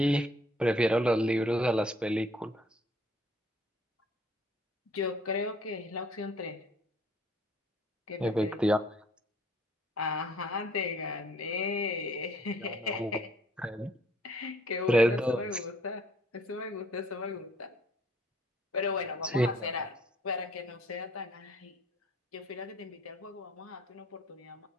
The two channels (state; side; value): normal; both; correlation 0.61